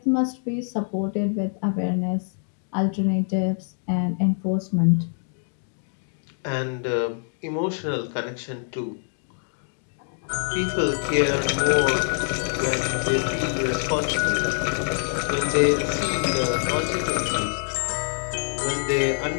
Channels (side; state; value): right; silent; 62 dB below the other